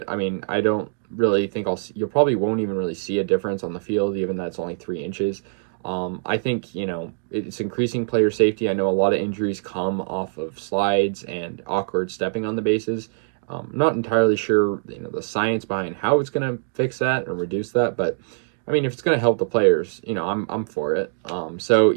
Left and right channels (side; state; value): left; silent; digital silence